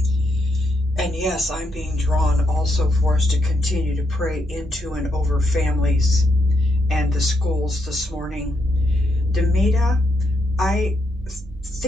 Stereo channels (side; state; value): both; normal; correlation 0.80